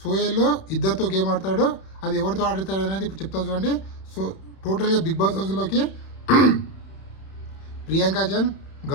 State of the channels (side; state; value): right; late; 31 ms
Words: సోయల్లో ఇద్దరితో గేమ్ ఆడతాడు. అది ఎవరితో ఆడతాడు అనేది ఇప్పుడు చెప్తా చూడండి. సో టోటల్గా బిగ్ బాస్ హౌస్లోకి ప్రియాంక జన్,